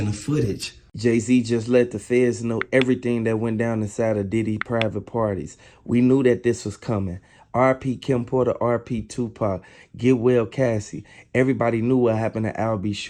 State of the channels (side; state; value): both; identical; correlation 1.00